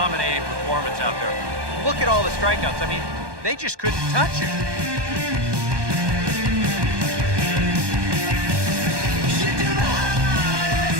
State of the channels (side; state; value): left; late; 1.2 ms